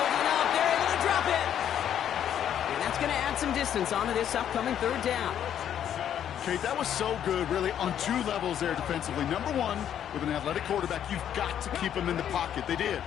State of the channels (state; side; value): quieter; right; 9.8 dB